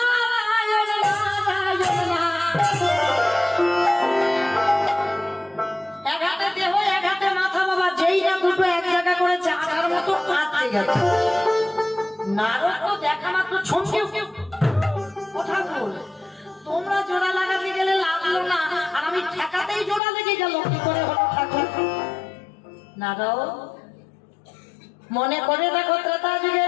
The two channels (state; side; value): drops out; right; at 20.0 s